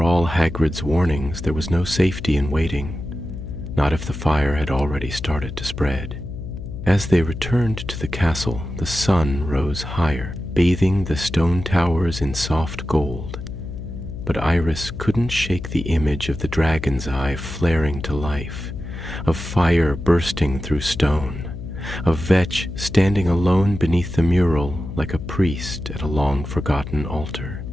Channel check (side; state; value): left; noise; hum, 9 dB below the sound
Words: all Hagrid's warnings, there was no safety in waiting, not if the fire had already started to spread. As they returned to the castle, the sun rose higher, bathing the stone towers in soft gold. But Iris couldn't shake the image of the dragon's eye flaring to life, of fire bursting through stone, of Vetch standing alone beneath the mural like a priest at a long-forgotten altar.